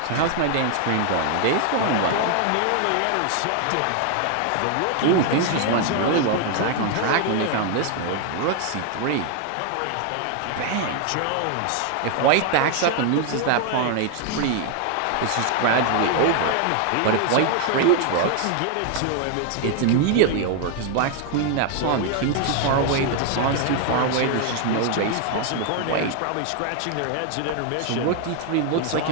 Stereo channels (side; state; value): both; different; correlation 0.00